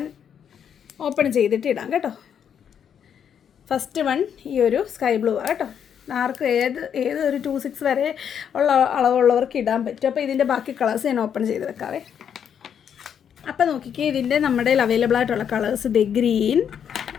ഓപ്പൺ ചെയ്തിട്ട് ഇടാം കേട്ടോ. ഫസ്റ്റ് വൺ ഈ ഒരു സ്കൈ ബ്ലൂ ആണ് കേട്ടോ. ആർക്കും ഏത് ഒരു 26 വരെ ഉള്ള അളവുള്ളവർക്ക് ഇടാൻ പറ്റും. അപ്പോൾ ഇതിൻ്റെ ബാക്കി കളേഴ്സ് ഞാൻ ഓപ്പൺ ചെയ്ത് വെക്കാവേ. അപ്പോൾ നോക്കിക്കേ, ഇതിൻ്റെ നമ്മുടെ അവൈലബിൾ ആയിട്ടുള്ള കളേഴ്സ് ഇത് ഗ്രീൻ,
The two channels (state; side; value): quieter; right; 8.3 dB